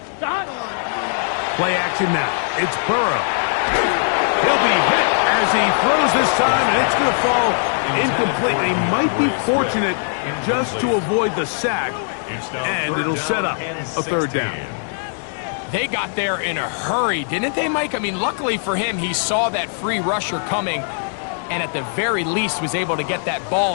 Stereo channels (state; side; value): silent; right; digital silence